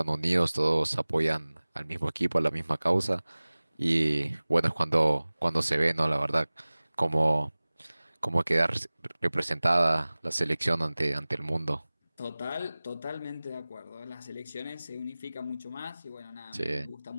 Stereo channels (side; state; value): both; inverted; correlation -0.99